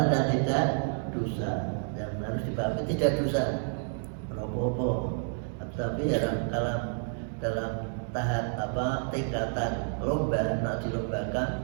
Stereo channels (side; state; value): left; silent; 58 dB below the other